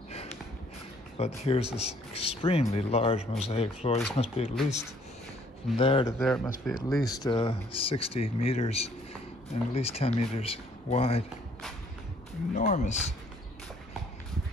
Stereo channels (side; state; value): both; normal; correlation 0.62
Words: But here's this extremely large mosaic floor. This must be at least, from there to there, it must be at least 60 meters and at least 10 meters wide. Enormous.